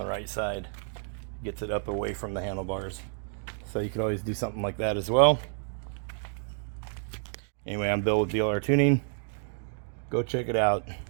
right side. Gets it up away from the handlebars. So you could always do something like that as well. Anyway, I'm Bill with BLR Tuning. Go check it out.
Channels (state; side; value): silent; left; digital silence